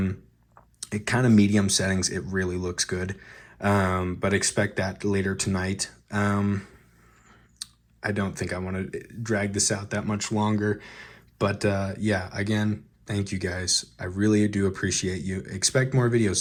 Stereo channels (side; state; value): both; identical; correlation 1.00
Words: kind of medium settings. It really looks good. But expect that later tonight. I don't think I want to drag this out that much longer. But yeah, again, thank you guys. I really do appreciate you. Expect more